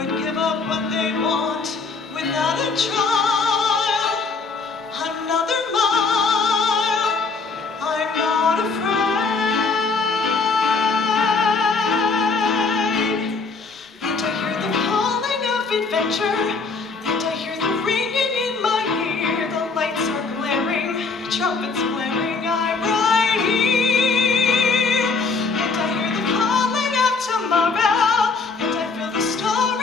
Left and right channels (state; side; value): quieter; right; 4.3 dB